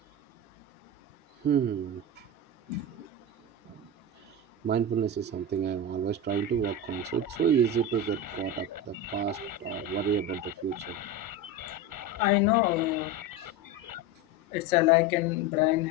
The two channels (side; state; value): both; normal; correlation 0.20